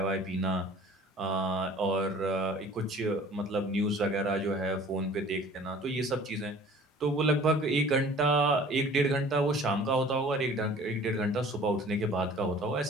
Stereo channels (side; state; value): both; normal; correlation 0.48